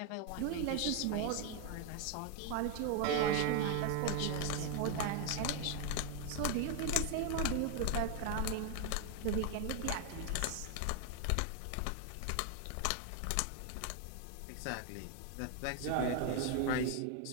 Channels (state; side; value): different; both; correlation 0.01